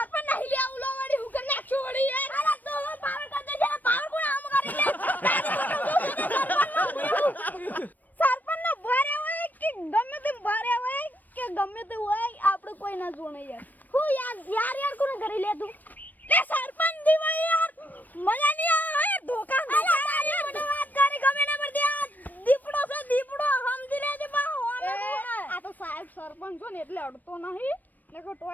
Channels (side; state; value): right; late; 0.085 ms